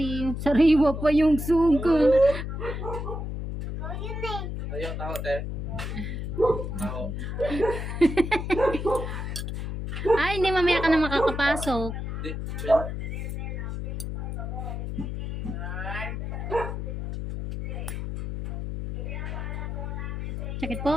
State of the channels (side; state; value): left; noise; hum, 4 dB below the sound